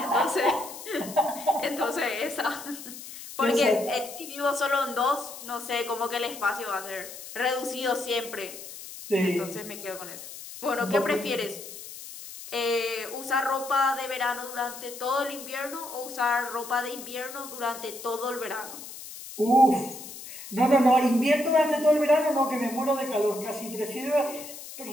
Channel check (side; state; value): left; noise; hiss, 13 dB below the sound